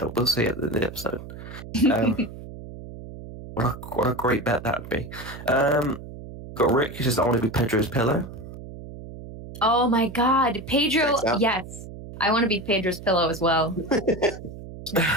up. We'll see it in the episode. What a great bet that would be. Got Rick who says I want to be Pedro's pillow. Oh my god, Pedro! Yes, I want to be Pedro's pillow as well.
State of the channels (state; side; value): noise; right; hum, 13 dB below the sound